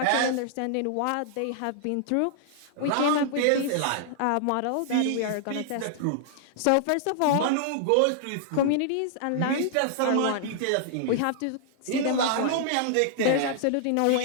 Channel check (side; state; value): both; different; correlation -0.01